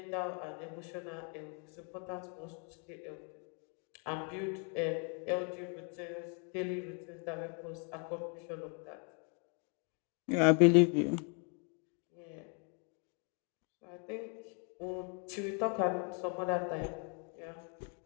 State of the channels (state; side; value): quieter; right; 39.4 dB